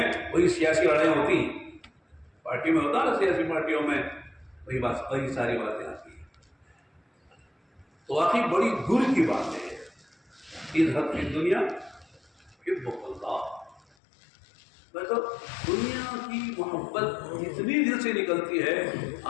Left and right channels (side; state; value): right; drops out; at 13.9 s